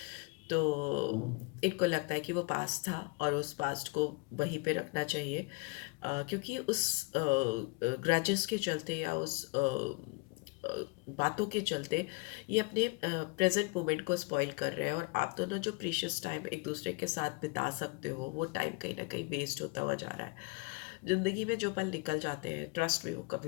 तो इनको लगता है कि वो पास्ट था और उस पास्ट को वहीं पे रखना चाहिए, क्योंकि उस ग्रजेस के चलते या उस बातों के चलते ये अपने प्रेजेंट मोमेंट को स्पॉइल कर रहे हैं, और आप दोनों जो प्रीशियस टाइम एक दूसरे के साथ बिता सकते हो, वो टाइम कहीं ना कहीं वेस्ट होता हुआ जा रहा है। ज़िंदगी में जो पल निकल जाते हैं, ट्रस्ट में वो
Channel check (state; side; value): quieter; right; 28.5 dB